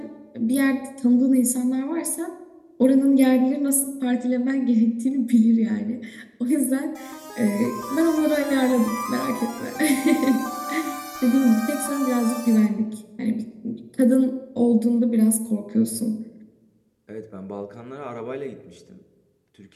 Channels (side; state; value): both; identical; correlation 1.00